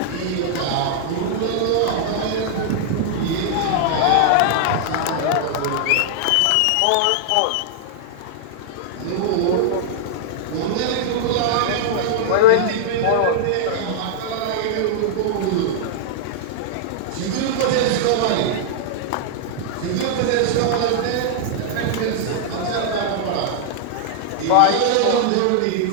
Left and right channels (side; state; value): both; different; correlation -0.01